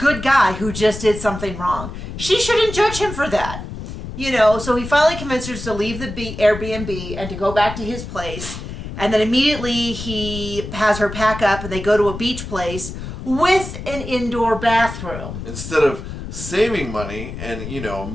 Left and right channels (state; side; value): noise; left; rumble, 9 dB below the sound